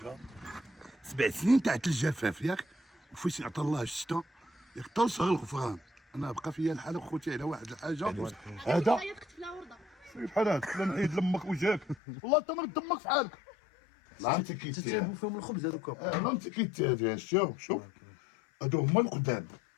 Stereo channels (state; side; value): drops out; right; at 12.0 s